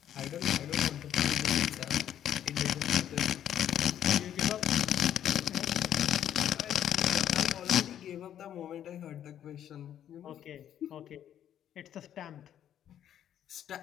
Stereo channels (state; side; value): quieter; right; 10.4 dB